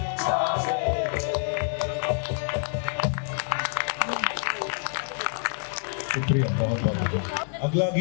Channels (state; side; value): silent; right; 60 dB below the other